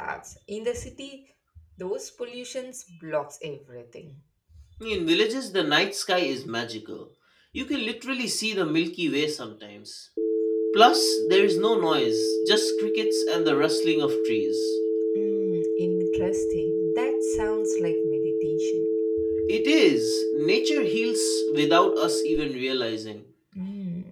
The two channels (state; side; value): identical; both; correlation 1.00